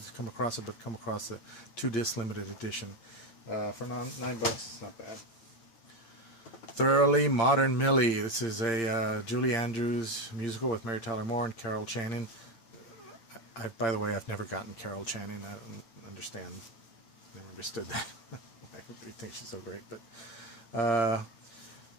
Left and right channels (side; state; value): right; late; 8.7 ms